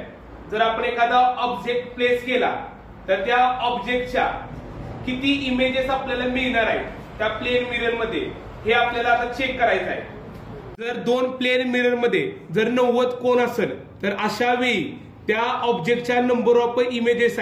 जर आपण एखादा ऑब्जेक्ट प्लेस केला तर त्या ऑब्जेक्टच्या किती इमेजेस आपल्याला मिळणार आहेत त्या प्लेन मिरर मध्ये हे आपल्याला आता चेक करायचं आहे। जर दोन प्लेन मिरर मध्ये जर 90 कोन असेल तर अशा वेळी त्या ऑब्जेक्टच्या नंबर ऑफ इमेजेस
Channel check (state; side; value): identical; both; correlation 1.00